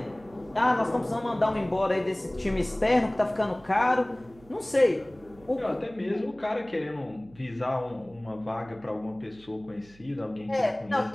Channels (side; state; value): right; noise; hum, 25 dB below the sound